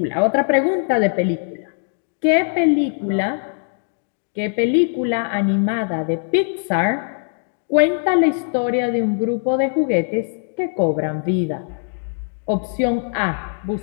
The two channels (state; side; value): silent; right; 65 dB below the other